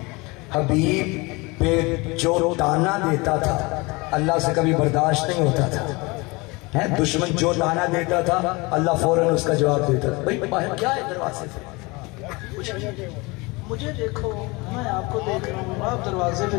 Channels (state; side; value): quieter; right; 25.3 dB